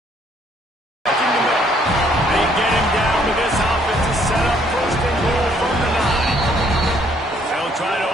They get him down to this offense to set up first and goal from the 9. They'll try to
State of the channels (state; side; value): normal; both; correlation 0.65